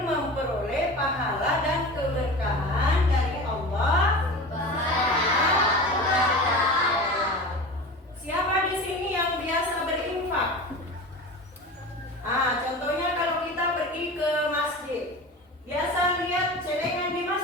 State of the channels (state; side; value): normal; both; correlation 0.32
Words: memperoleh pahala dan keberkahan dari Allah. Siapa di sini yang biasa berinfak? Contohnya kalau kita pergi ke masjid, biasa lihat celengan di